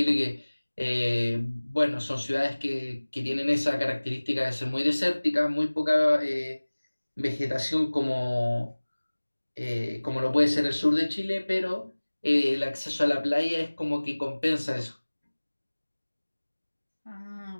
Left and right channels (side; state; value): both; inverted; correlation -1.00